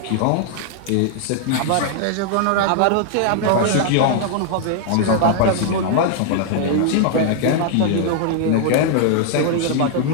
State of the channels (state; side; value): different; both; correlation 0.00